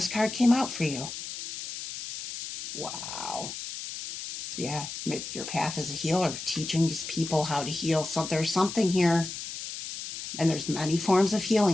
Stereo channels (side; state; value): left; noise; hiss, 8 dB below the sound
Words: card came out for you. Wow. Yeah, your path as a healer, teaching people how to heal. So there's something here, and there's many forms of